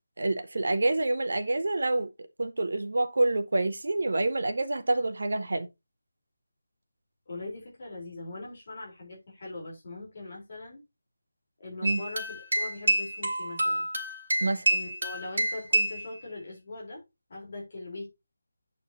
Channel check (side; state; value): both; inverted; correlation -0.96